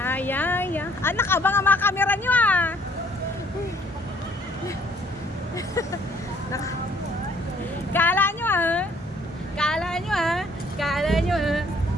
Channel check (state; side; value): normal; both; correlation 0.62